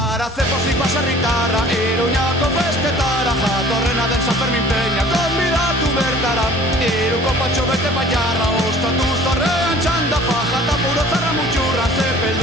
Garatze pozik baserritarra, Iruñako festetara, jatorrena den San Fermin Peña, konbidatu bertara. Iruko patxo bete baiarra, ostatu zorrean txanda, faja eta puro zarra mutxurra,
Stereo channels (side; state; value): both; normal; correlation 0.50